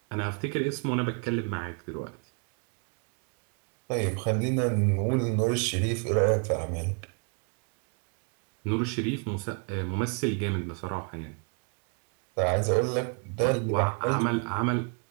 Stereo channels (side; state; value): left; quieter; 34.6 dB